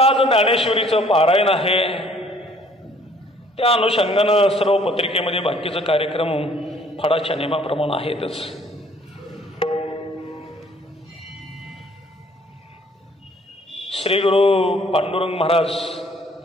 ज्ञानेश्वरीचं पारायण आहे. त्या अनुषंगानं सर्व पत्रिकेमध्ये बाकीचे कार्यक्रम फडाच्या नियमाप्रमाणे आहेतच. श्री गुरु पांडुरंग महाराज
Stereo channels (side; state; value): both; normal; correlation 0.59